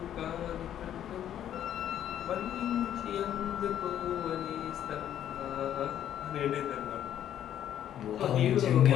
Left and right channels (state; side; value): quieter; right; 10.7 dB